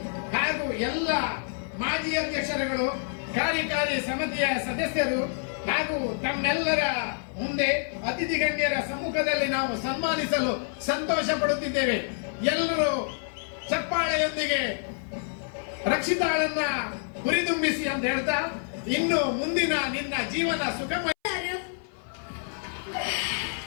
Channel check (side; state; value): right; silent; 60 dB below the other